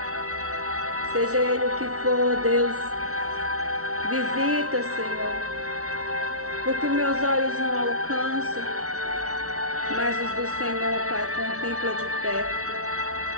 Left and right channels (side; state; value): left; late; 0.64 ms